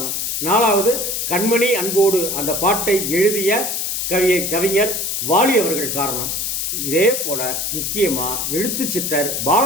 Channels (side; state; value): left; noise; hiss, 1 dB below the sound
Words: 4வது கண்மணி அன்போடு அந்த பாட்டை எழுதிய கவிஞர் வாலி அவர்கள் காரணம். இதே போல முக்கியமாக எழுத்தாளர்